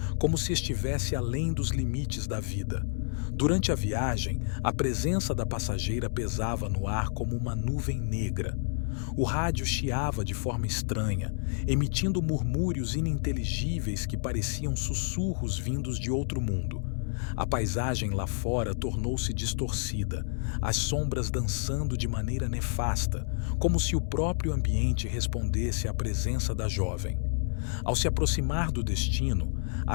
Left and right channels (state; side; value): silent; right; 58 dB below the other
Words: como se estivesse além dos limites da vida. Durante a viagem, a presença da passageira pesava no ar como uma nuvem negra. O rádio chiava de forma estranha, emitindo murmúrios ininteligíveis que pareciam sussurros vindos de outro mundo. A paisagem lá fora tornou-se distorcida, as sombras dançando de maneira nefasta, como se o próprio ambiente respondesse à presença da jovem. Ao se aproximar do destino,